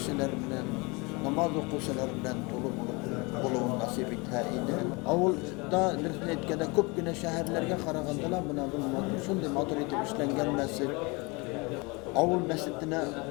bilen, namaz okuşular bilen dolu buluğun nasip ettiğini. Avulda etkede köp güne şehirlerge karagandalar buna şunday matur etip işlengen mescit. Avul mescidine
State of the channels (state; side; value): quieter; right; 27.4 dB